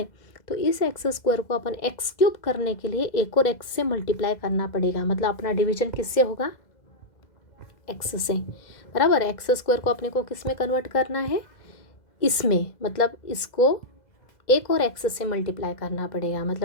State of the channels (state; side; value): late; right; 2.0 ms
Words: तो इस x² को अपन x³ करने के लिए एक और x से मल्टीप्लाई करना पड़ेगा। मतलब अपना डिवीजन किससे होगा, x से, बराबर। x² को अपने को किस में कन्वर्ट करना है, इसमें, मतलब इसको एक और x से मल्टीप्लाई करना पड़ेगा।